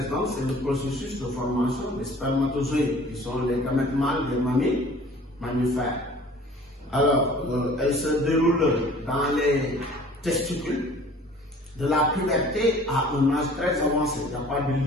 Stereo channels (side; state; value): both; normal; correlation 0.49